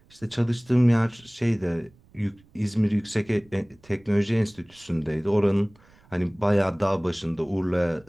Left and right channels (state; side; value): noise; right; rumble, 29 dB below the sound